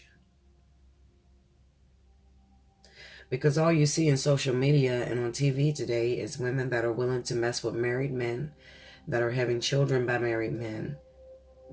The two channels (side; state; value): both; identical; correlation 1.00